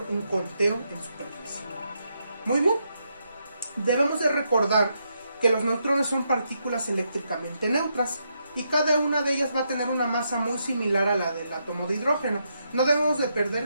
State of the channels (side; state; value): both; inverted; correlation -0.80